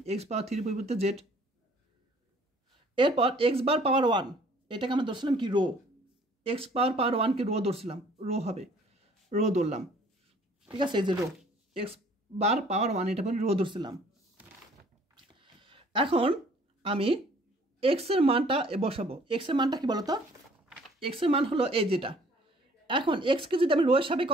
এক্স পাওয়ার 3 এর পরিবর্তে জেড। এরপর এক্স বার পাওয়ার 1 এটাকে আমরা ধরছিলাম কি রো, এক্স পাওয়ার 1কে রো ধরছিলাম, রো হবে, রো ধরলাম, ঠিক আছে। এই যে রো এক্স বার পাওয়ার 1 এটা পরে রো ধরছিলাম। এখন আমি এক্স এর মানটা বসাবো। এক্স এর মানটা কি বলতো, এক্স এর মান হলো এই যেটা। এখন এক্সকে যদি আমি রো এর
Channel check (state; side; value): normal; both; correlation 0.57